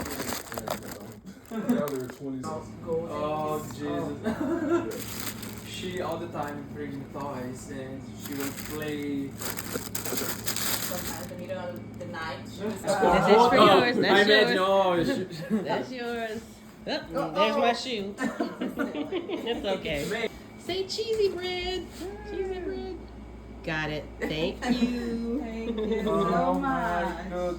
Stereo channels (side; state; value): both; identical; correlation 1.00